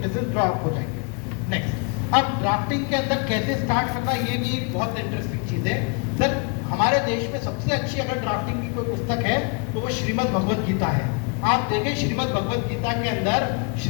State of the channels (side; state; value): right; quieter; 34.9 dB